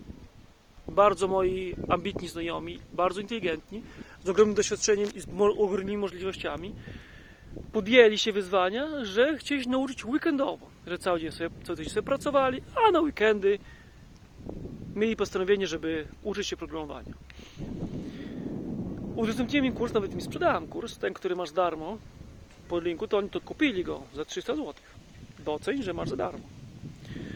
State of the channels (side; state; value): both; identical; correlation 1.00